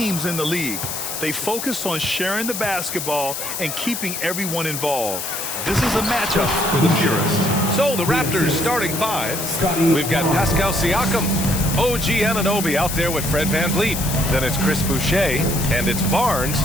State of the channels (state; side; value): noise; left; hiss, 5 dB below the sound